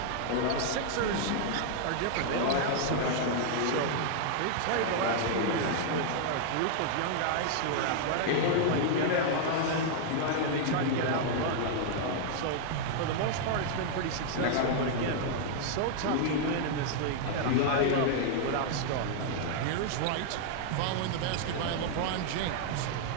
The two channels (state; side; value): different; both; correlation 0.00